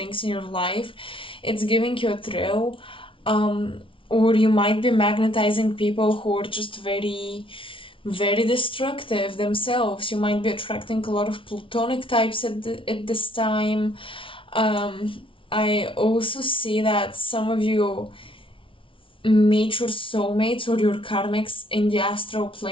in your life. It's giving you a thrill. Or you might be magnetizing people who are just very very destructive themselves. You might be attracting a lot of platonic types at this time. I also see that some of you meet your soulmates or your karmics in the astral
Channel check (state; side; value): late; right; 0.25 ms